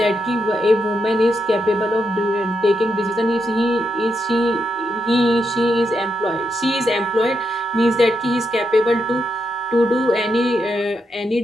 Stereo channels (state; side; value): normal; both; correlation 0.83